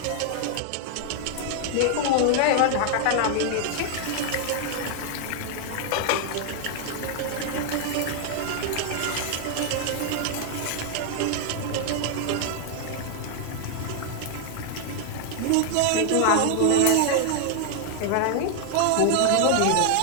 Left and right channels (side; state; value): both; different; correlation 0.00